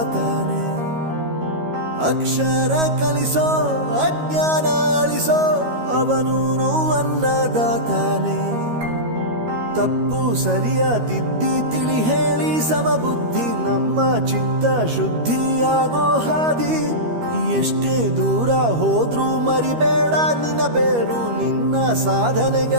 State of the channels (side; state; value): left; late; 13 ms